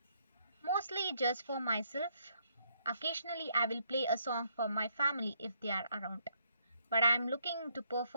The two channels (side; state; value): both; inverted; correlation -0.74